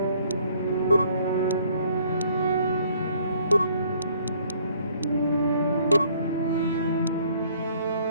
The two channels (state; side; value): inverted; both; correlation -0.62